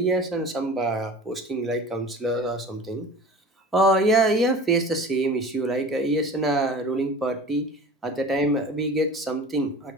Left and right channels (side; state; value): both; normal; correlation 0.38